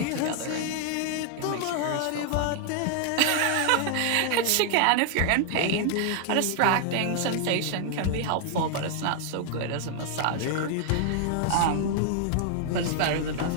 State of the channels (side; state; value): both; different; correlation 0.00